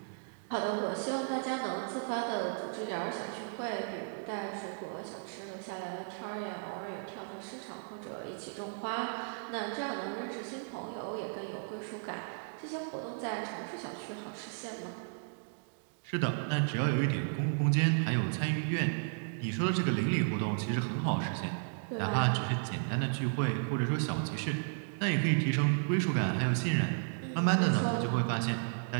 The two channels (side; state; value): left; silent; digital silence